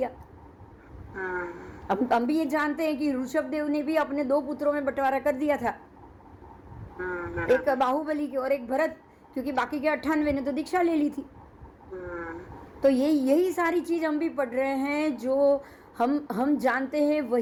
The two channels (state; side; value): identical; both; correlation 1.00